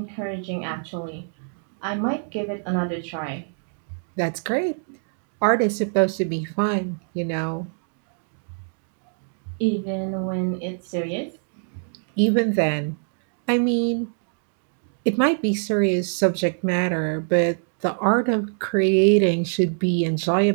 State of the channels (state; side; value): silent; left; 62 dB below the other